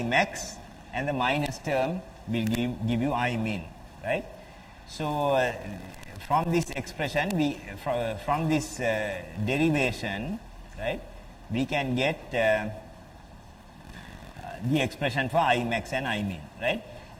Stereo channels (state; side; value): identical; both; correlation 1.00